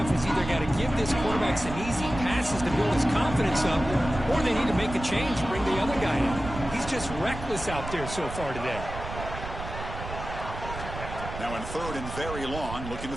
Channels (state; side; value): noise; right; rumble, 9 dB below the sound